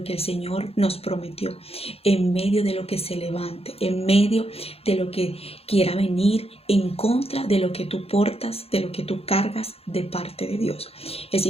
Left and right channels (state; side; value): late; right; 0.29 ms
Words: que el Señor nos prometió, en medio de lo que se levante, en medio de lo que quiera venir en contra de lo que tú portas, de lo que tú cargas de parte de Dios. Es